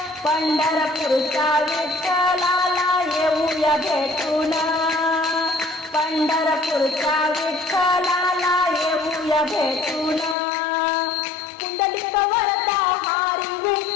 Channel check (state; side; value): drops out; right; at 10.4 s